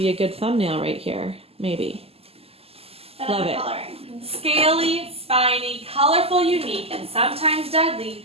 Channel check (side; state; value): left; late; 0.29 ms